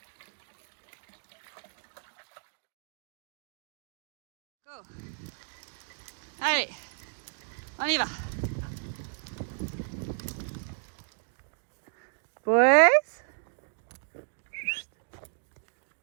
Go. Allez, on y va. Boys.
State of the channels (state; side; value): silent; left; 56 dB below the other